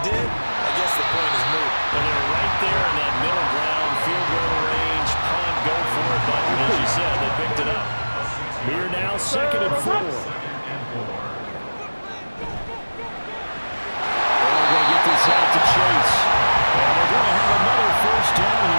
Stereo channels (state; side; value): inverted; both; correlation -1.00